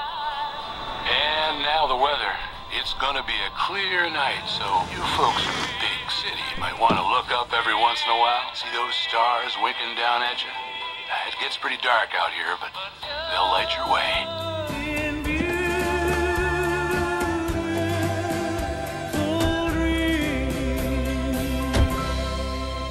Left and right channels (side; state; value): both; identical; correlation 1.00